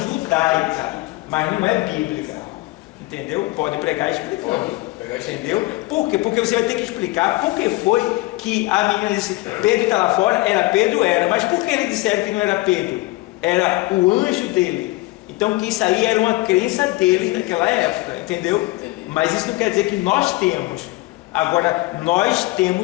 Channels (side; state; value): right; quieter; 20.9 dB